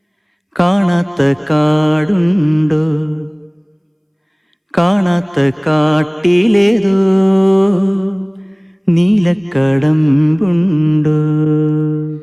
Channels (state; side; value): identical; both; correlation 1.00